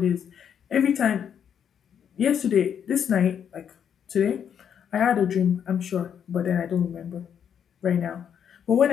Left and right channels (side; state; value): right; quieter; 8.3 dB